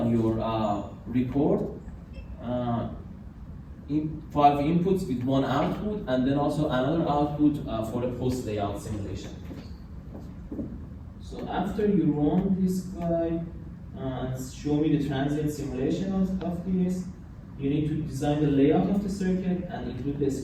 your report. 5 inputs with 1 output, and then also another output for the post layout simulation. So after you run this guy and show me the transient simulation of this, you need to design the layout of the circuit and include the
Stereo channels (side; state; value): both; identical; correlation 1.00